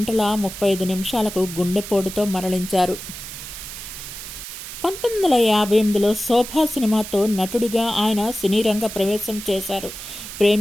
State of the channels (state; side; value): noise; right; hiss, 10 dB below the sound